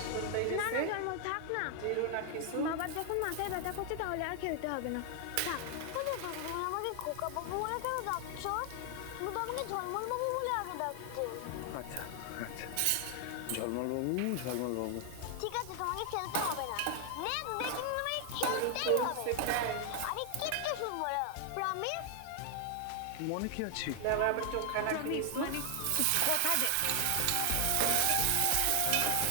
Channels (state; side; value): different; both; correlation 0.00